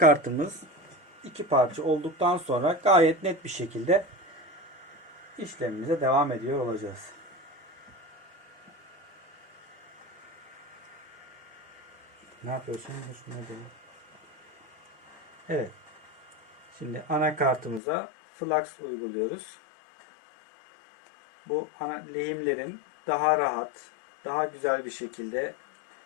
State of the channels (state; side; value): drops out; right; at 17.8 s